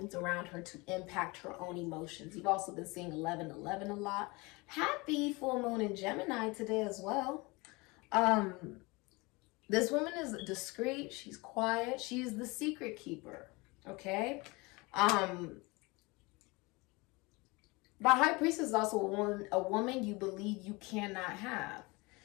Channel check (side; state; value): right; quieter; 25.2 dB